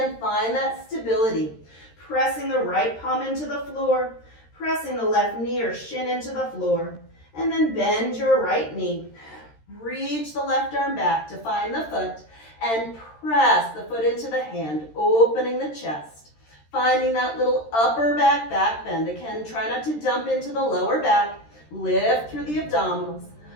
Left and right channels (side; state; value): right; late; 13 ms